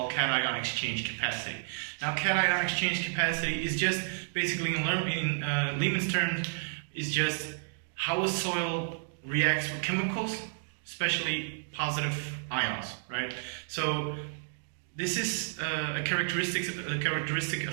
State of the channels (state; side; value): silent; left; digital silence